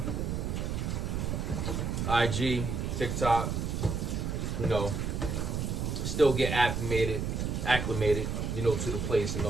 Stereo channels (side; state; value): right; noise; rumble, 1 dB below the sound